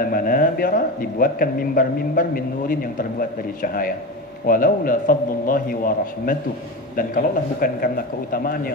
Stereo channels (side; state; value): both; normal; correlation 0.24